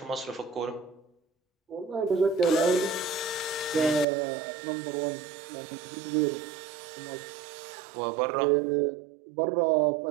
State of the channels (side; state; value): left; drops out; at 4.0 s